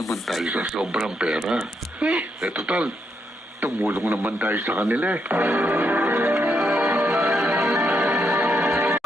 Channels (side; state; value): both; normal; correlation 0.79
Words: tayo sa sobrang pera. Total, tumulong naman tayo sa kanila.